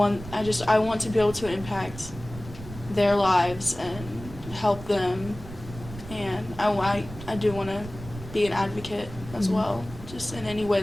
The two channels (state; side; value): noise; right; rumble, 14 dB below the sound